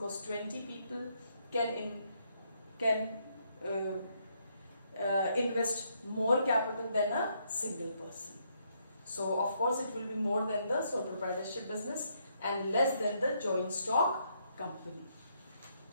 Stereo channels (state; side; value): inverted; both; correlation -0.74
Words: 20 people can invest more capital than a single person. So of course, it will be more than the sole proprietorship business and less than the joint stock company.